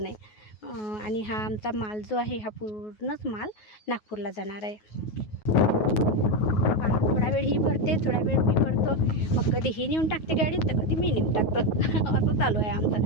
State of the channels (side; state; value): right; late; 9.4 ms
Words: नाही. आणि हा आमचा माल जो आहे, हा पूर्णच माल नागपूरला जाणार आहे. थोडा वेळ ही भरते, थोडा वेळ मी भरतो. मग कधी ही नेऊन टाकते गाडीत, तर कधी मी नेऊन टाकतो. असं चालू आहे